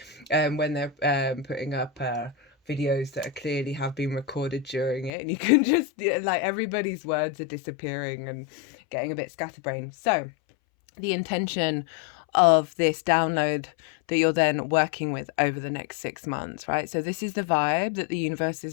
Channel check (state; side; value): drops out; right; at 5.1 s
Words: when they're putting up videos that clearly have been recorded during it, and you can just like everybody's words are disappearing and getting a bit scatterbrained. So the intention of this download that you're then working with over the next 6 months, right? So this is the vibe that the universe